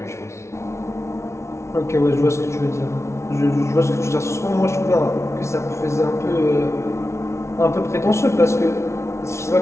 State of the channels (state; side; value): late; right; 0.13 ms